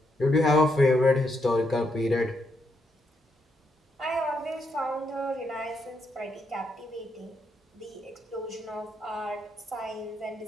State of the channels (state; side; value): normal; both; correlation 0.79